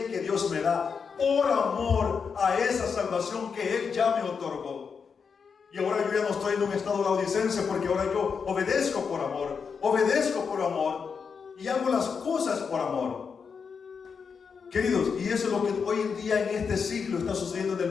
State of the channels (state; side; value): quieter; right; 5.9 dB